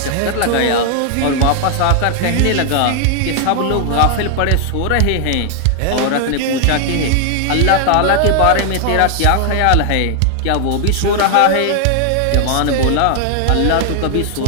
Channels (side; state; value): both; different; correlation 0.00